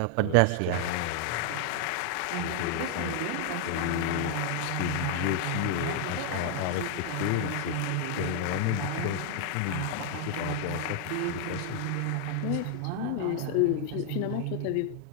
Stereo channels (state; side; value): different; both; correlation 0.00